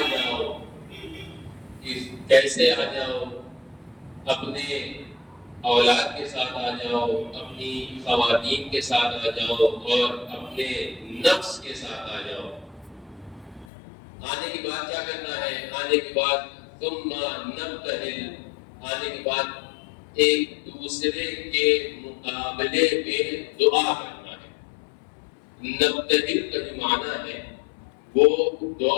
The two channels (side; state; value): right; drops out; at 13.7 s